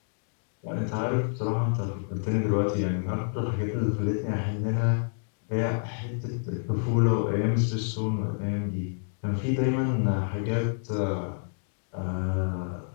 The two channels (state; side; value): silent; right; digital silence